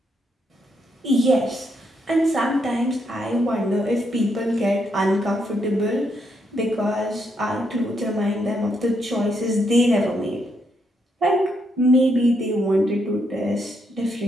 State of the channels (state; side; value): normal; both; correlation 0.78